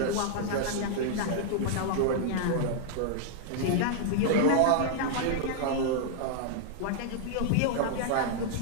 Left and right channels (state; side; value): different; both; correlation -0.01